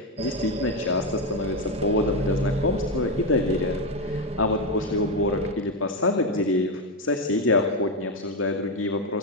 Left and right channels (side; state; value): both; normal; correlation 0.08